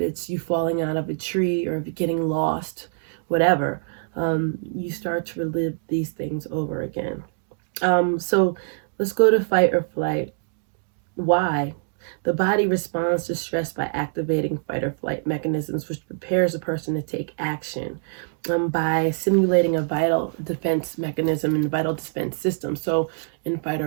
you falling out of a tree, or if you're getting lost, whatever. You start to relive these things over again. So let's go to fight or flight. Why? The body responds to stress by activating fight or flight mechanisms, which prepares a person to take action by simulating a vital defense mechanism in the vital defense system. So, in fight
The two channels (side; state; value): left; silent; digital silence